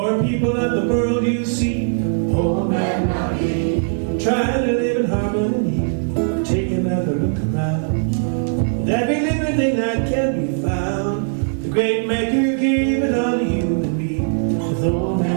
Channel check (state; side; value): silent; left; 65 dB below the other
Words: people of the world you see. Old man, now me. Trying to live in harmony. Take another look around. With every living thing that can be found, the great maker gave it all to you and me. With old